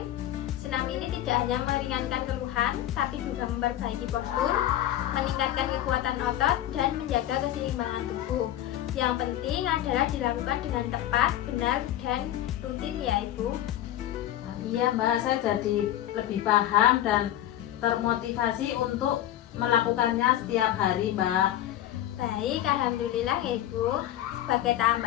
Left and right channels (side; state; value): right; quieter; 12.6 dB